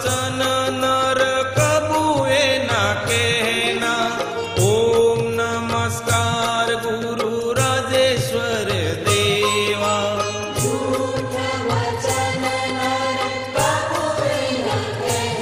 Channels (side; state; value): both; identical; correlation 1.00